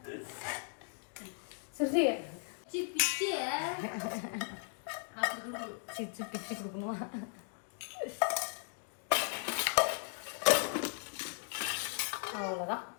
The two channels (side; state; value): right; silent; 53 dB below the other